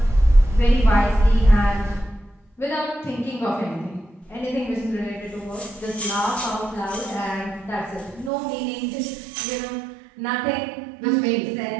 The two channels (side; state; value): left; drops out; at 8.3 s